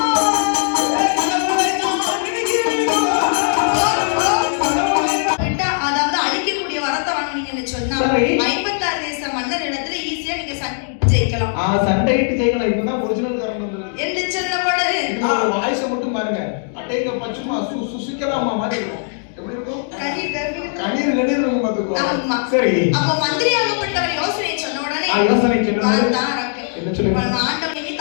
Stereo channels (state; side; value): silent; right; digital silence